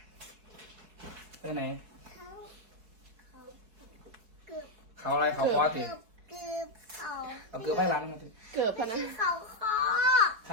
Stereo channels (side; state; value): left; late; 4.7 ms